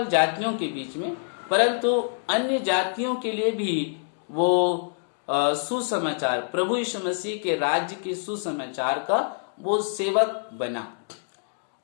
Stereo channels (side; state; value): right; silent; digital silence